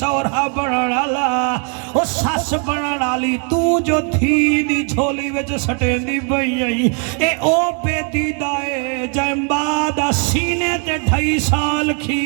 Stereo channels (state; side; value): quieter; left; 39.2 dB